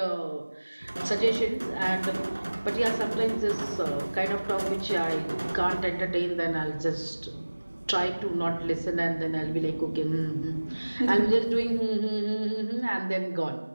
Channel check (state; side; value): inverted; both; correlation -1.00